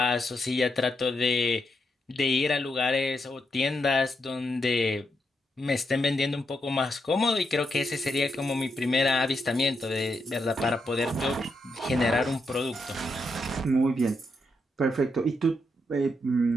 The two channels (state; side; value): normal; both; correlation 0.82